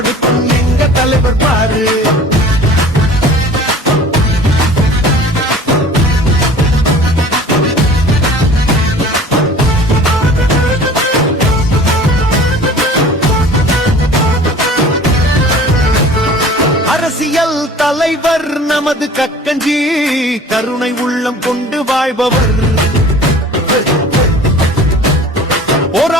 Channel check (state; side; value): normal; both; correlation 0.45